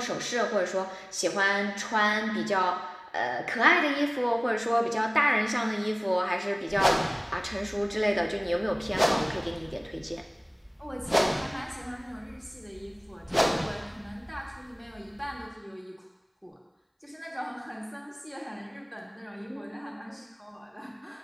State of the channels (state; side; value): identical; both; correlation 1.00